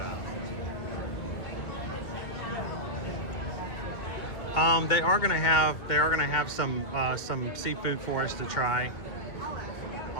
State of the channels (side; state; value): right; late; 2.3 ms